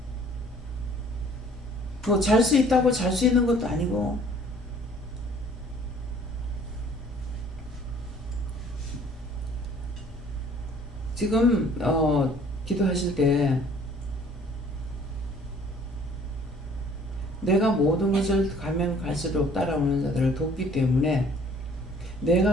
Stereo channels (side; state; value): both; normal; correlation 0.55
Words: 뭐 잘 수 있다고 잘 수 있는 것도 아니고, 지금 기도하실 때 내가 모든 것을 가면 갈수록 따라오는 자들을 돕기 때문에 내가